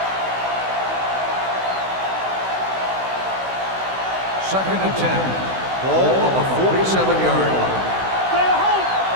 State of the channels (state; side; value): late; left; 16 ms